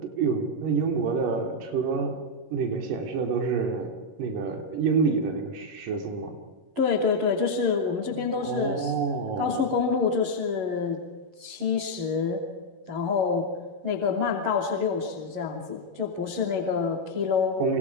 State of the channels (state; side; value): late; left; 11 ms